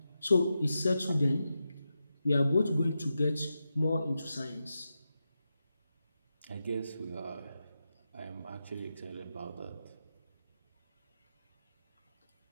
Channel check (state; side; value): inverted; both; correlation -0.89